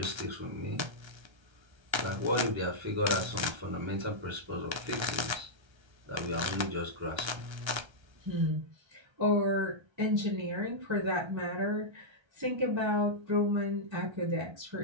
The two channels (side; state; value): left; late; 1.3 ms